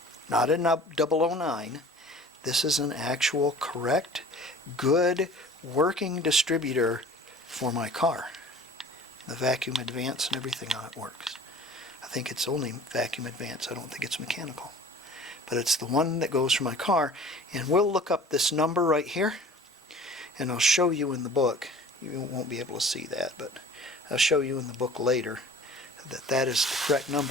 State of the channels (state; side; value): normal; both; correlation 0.45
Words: Not a 009. This is an actual correct, good, working distributor for my car. The vacuum advance and everything on it works. I think it's only vacuum advance. I don't think it's mechanical. But it's the one that goes for my car. And we'll look up this number right here. And I'll show you in the book. You won't be able to see that, but I'll show you in the book later that that is the correct